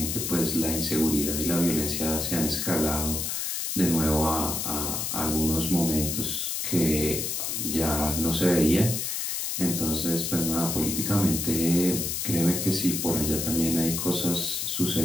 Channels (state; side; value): noise; left; hiss, 2 dB below the sound